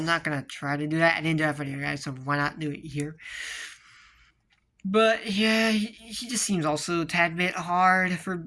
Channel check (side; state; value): both; identical; correlation 1.00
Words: not gonna try to do that. I didn't do that for you guys, so why not do it here? But yeah, he just seems also a tad bit hard for